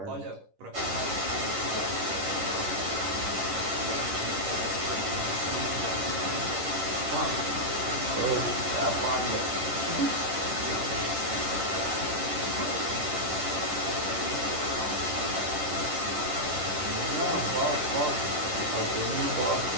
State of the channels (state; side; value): late; left; 11 ms